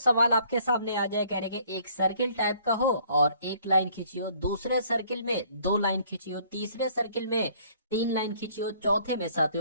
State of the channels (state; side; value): inverted; both; correlation -0.60